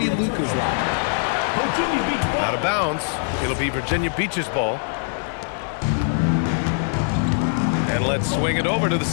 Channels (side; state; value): right; silent; digital silence